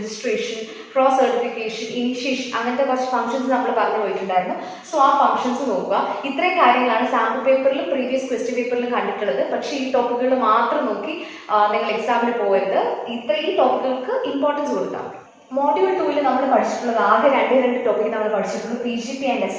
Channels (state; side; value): identical; both; correlation 1.00